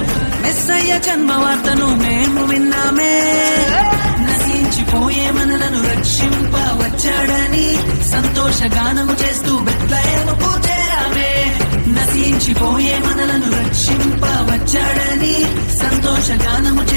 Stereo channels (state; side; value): inverted; both; correlation -1.00